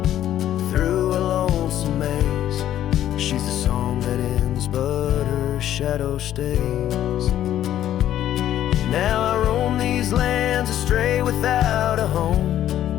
through a lonesome maze. She's the song that ends, but her shadow stays. Now I roam these lands astray without a home,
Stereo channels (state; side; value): quieter; right; 11.8 dB